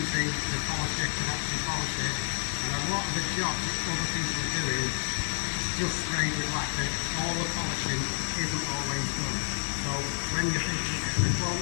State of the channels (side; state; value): right; silent; digital silence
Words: the polisher can actually polish it. And a lot of the jobs that other people are doing just sprayed with lacquer. All the polishing isn't always done. So when you're thinking of the quote,